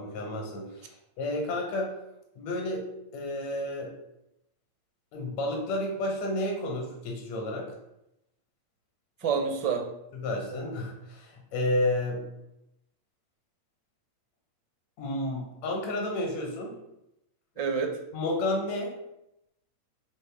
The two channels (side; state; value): right; late; 8.7 ms